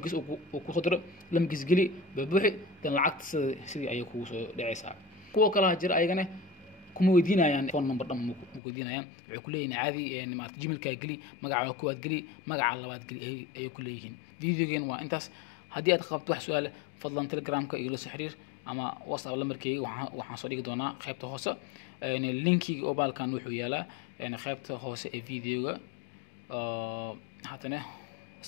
uu ku qodro lambarkiis gali buuxi dan lacagta sidii ay kugu soo dhacaysaa kuwa kala jira ayagana kuma weydiinayaan phone number dhan ma weydiinayaan waxay ku leeyihiin caadi maartay Gmailka gali magaca koowaad gali magaca labaad gali ay ku leeyihiin videogan waa intaas haddii aad qabto wax su'aal fadlan Telegramka iyo la soo xiriir ama WhatsApp lambarkayga waxaan soo dhigi doonaa qaybta hoose linkiga oo baalkan wuxuu yaalaa qaybta hoose ee videoga hatana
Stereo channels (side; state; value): right; drops out; at 8.6 s